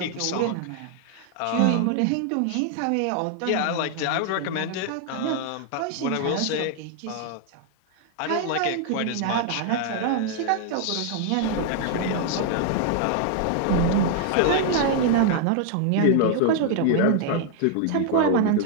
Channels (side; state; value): both; different; correlation 0.00